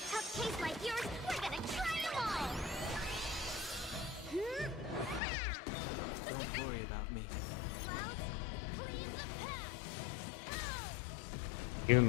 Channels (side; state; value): right; drops out; at 5.2 s